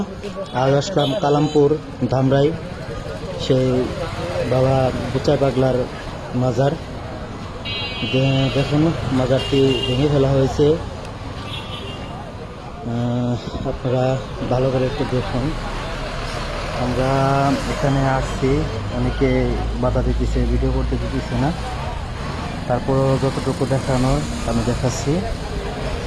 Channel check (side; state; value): both; identical; correlation 1.00